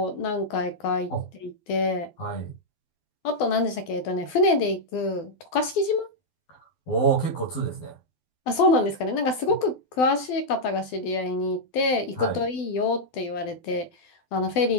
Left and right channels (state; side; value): late; right; 12 ms